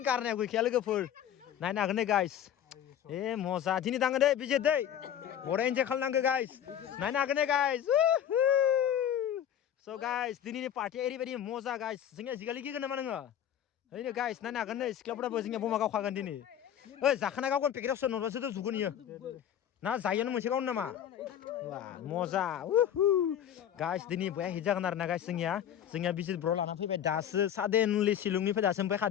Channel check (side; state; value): right; quieter; 10.0 dB